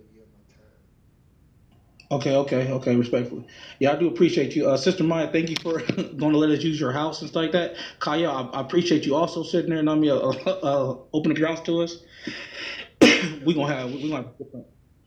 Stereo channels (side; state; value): both; identical; correlation 1.00